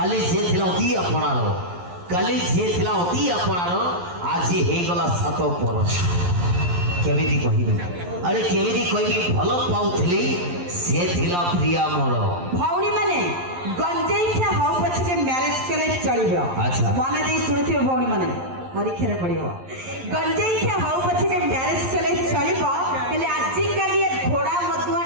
ସିଏ ଥିଲା ଅତି ଆପଣାର, କାଲି ସିଏ ଥିଲା ଅତି ଆପଣାର, ଆଜି ହେଇଗଲା 7 ବରଷ। କେମିତି କହିବି, ଆରେ କେମିତି କହିବି, ଭଲ ପାଉଥିଲି ସେ ଥିଲା ପ୍ରିୟା ମୋର। ଭଉଣୀ ମାନେ ଗଞ୍ଜେଇ ଖିଆ ହଉ ପଛକେ ମ୍ୟାରେଜ କଲେ ଚଳିବ। ଆଚ୍ଛା। ମନେ ଦେଇ ଶୁଣୁଥିବେ ଭଉଣୀ ମାନେ, ପରୀକ୍ଷାରେ ପଡ଼ିବ। ଗଞ୍ଜେଇ ଖିଆ ହଉ ପଛକେ ମ୍ୟାରେଜ କଲେ ଚଳିବ, ହେଲେ ଆଜିକାଲି ଏ ଘୋଡ଼ା ମଧୁଆ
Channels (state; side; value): late; left; 11 ms